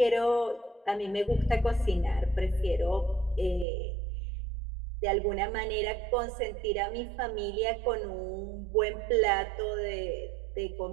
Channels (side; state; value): left; drops out; at 3.7 s